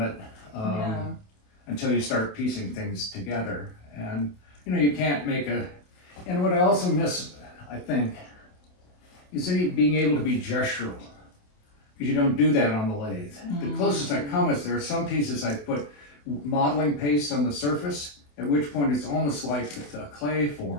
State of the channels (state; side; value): late; right; 28 ms